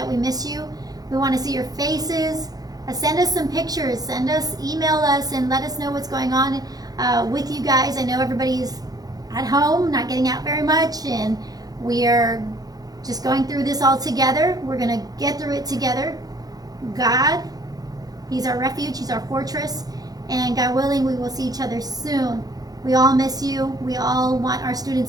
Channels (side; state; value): left; late; 0.18 ms